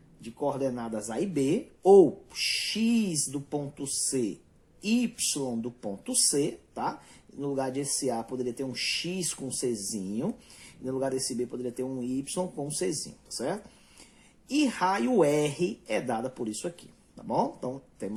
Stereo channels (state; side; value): identical; both; correlation 1.00